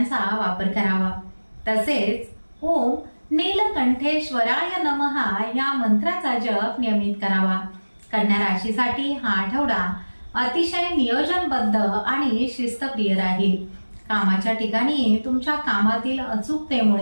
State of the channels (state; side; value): inverted; both; correlation -1.00